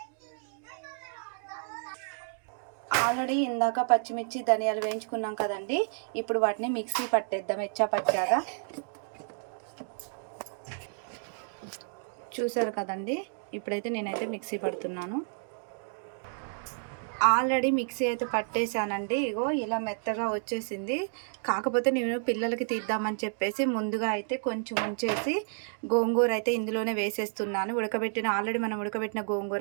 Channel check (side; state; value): left; silent; digital silence